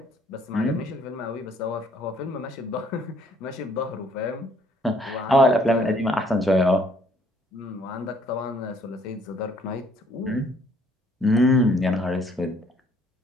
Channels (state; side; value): normal; both; correlation 0.63